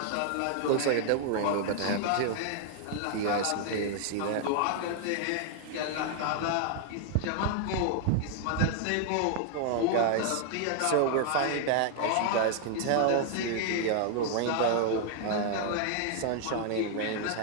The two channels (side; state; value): both; different; correlation 0.00